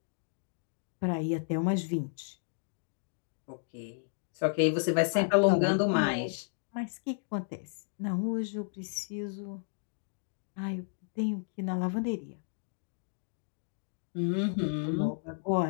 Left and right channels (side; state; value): right; silent; digital silence